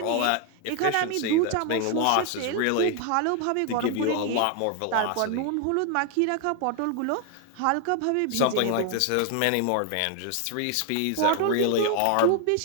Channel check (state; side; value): different; both; correlation 0.00